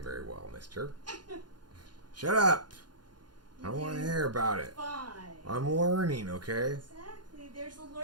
very well, mister. Shut up! I don't want to hear about it. Fine. I'm learning, okay? Exactly. There's a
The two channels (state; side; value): late; left; 0.71 ms